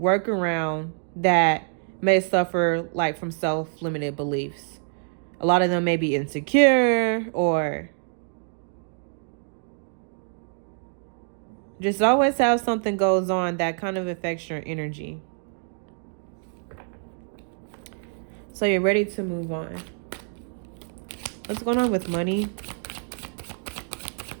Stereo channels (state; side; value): silent; left; 61 dB below the other